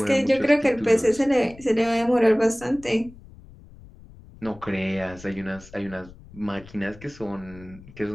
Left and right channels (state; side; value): noise; left; rumble, 20 dB below the sound